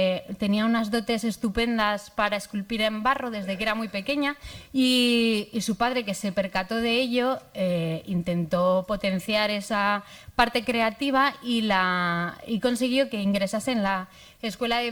unas dotes estupendas para esculpir en barro desde que era muy pequeña, y su padre, que se percató de ello, intentó potenciar esa parte creativa y consiguió que ingresase en la Escuela de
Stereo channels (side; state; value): both; identical; correlation 1.00